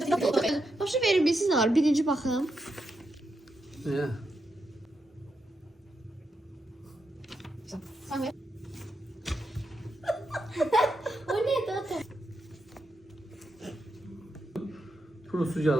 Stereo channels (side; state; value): both; normal; correlation 0.84